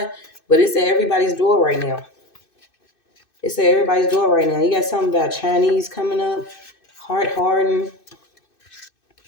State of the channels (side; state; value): right; late; 2.6 ms